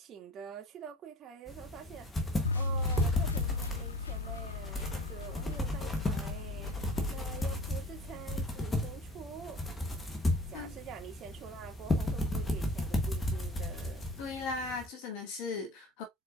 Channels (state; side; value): normal; both; correlation 0.42